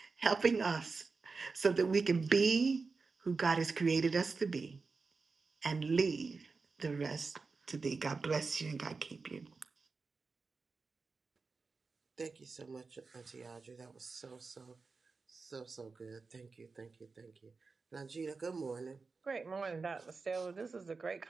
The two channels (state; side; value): quieter; left; 4.4 dB